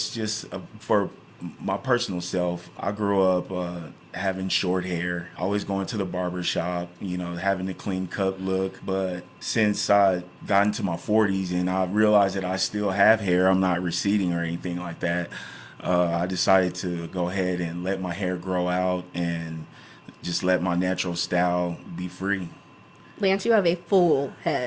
just for my personal self. I grew up having short hair, always going to the barber shop, having the clean cut look. But since I got into my 40s and I realized that I still have hair, I'm not receding or anything like that, I decided to go ahead and let my hair grow out and just let my natural style be free. Lance, you have a full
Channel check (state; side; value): identical; both; correlation 1.00